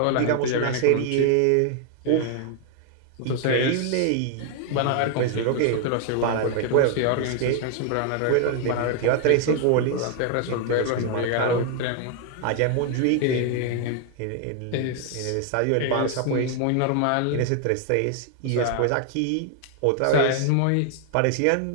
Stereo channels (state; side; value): different; both; correlation 0.00